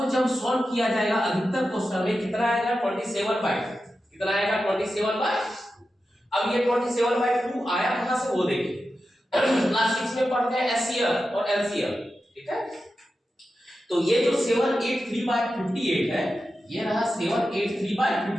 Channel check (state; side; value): normal; both; correlation 0.91